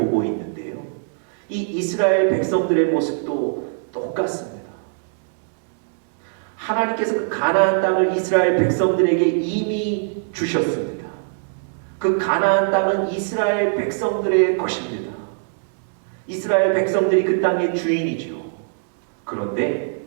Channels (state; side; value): silent; left; digital silence